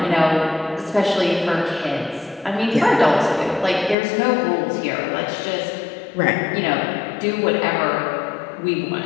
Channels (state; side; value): drops out; right; at 4.0 s